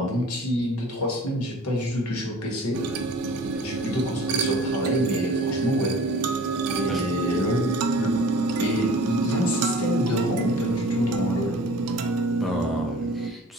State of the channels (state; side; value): normal; both; correlation 0.46